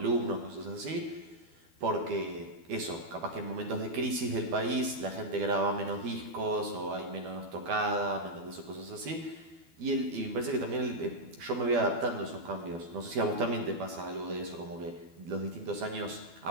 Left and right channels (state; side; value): late; left; 12 ms